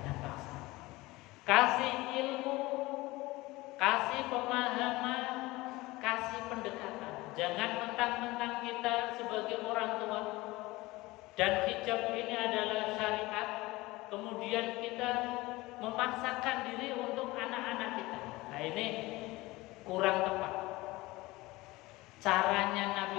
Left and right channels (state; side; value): quieter; right; 20.5 dB